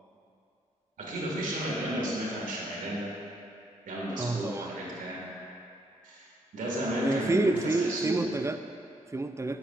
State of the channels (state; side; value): normal; both; correlation 0.73